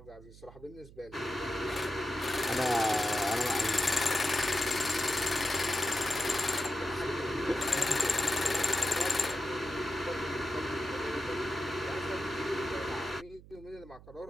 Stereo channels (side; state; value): right; noise; hum, 20 dB below the sound